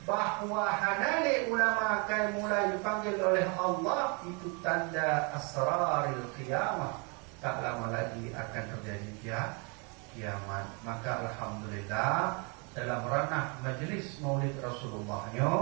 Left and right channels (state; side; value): quieter; left; 33.2 dB